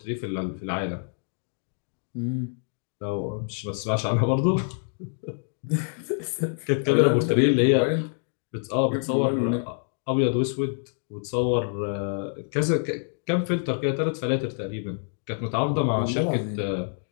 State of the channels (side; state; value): right; silent; 61 dB below the other